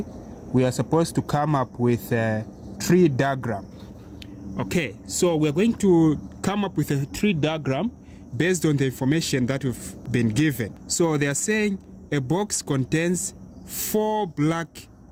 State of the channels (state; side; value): identical; both; correlation 1.00